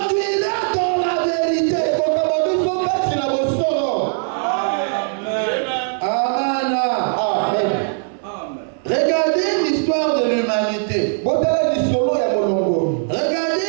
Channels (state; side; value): silent; left; 62 dB below the other